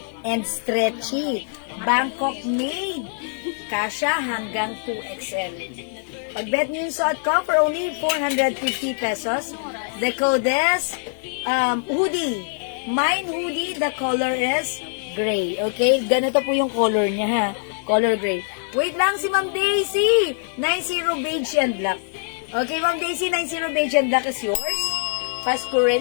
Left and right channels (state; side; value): silent; right; 63 dB below the other